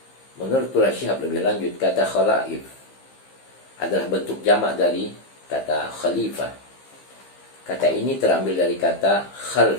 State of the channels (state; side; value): late; right; 15 ms